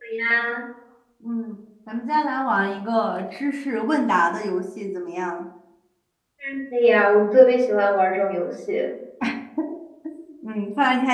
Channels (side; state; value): both; identical; correlation 1.00